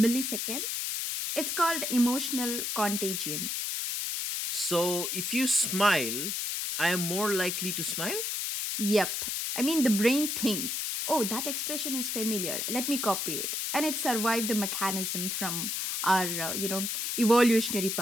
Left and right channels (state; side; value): noise; left; hiss, 1 dB below the sound